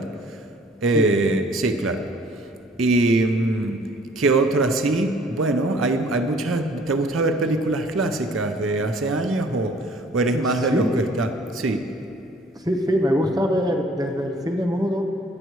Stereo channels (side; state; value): both; normal; correlation 0.56